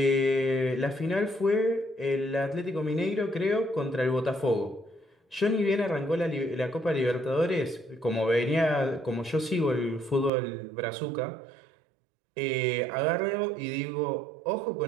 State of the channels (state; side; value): drops out; left; at 10.3 s